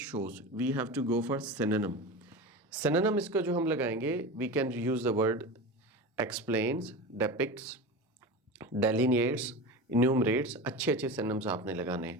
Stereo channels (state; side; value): normal; both; correlation 0.27